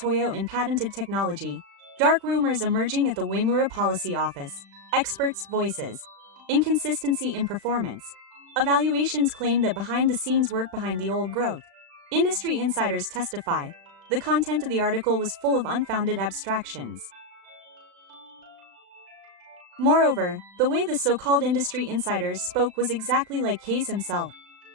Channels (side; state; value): left; late; 36 ms